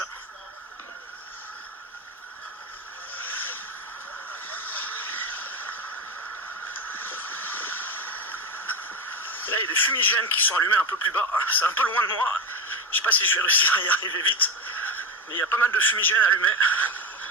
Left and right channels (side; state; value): both; normal; correlation 0.17